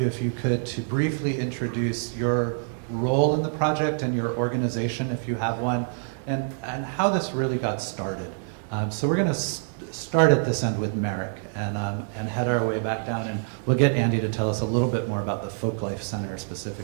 if you could, to briefly introduce your role in the project and your organization, if you have one, and how this really got started. So we're going to start at this end with Marek and head our way back down, and we'll get Andy to tell us a little bit more about the Folklife Center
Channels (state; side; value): silent; left; digital silence